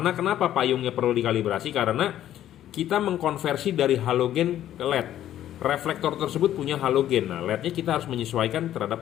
kenapa payungnya perlu dikalibrasi? Karena kita mengkonversi dari halogen ke LED. Reflektor tersebut punya halogen. Nah, LED-nya kita harus menyesuaikan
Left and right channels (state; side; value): quieter; right; 12.0 dB